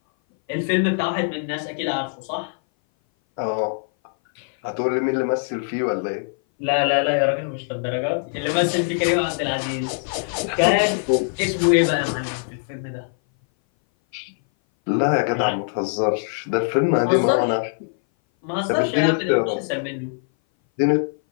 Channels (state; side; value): silent; right; 59 dB below the other